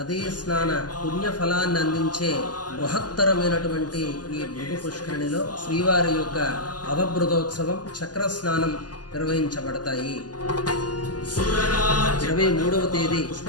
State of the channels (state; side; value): late; right; 0.69 ms